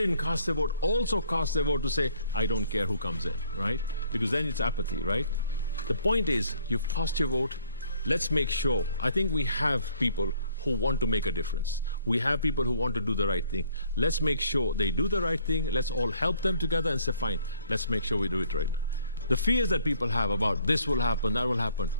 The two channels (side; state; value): both; inverted; correlation -0.63